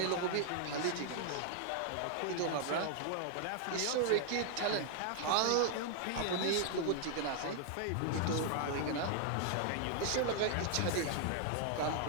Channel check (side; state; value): both; different; correlation 0.00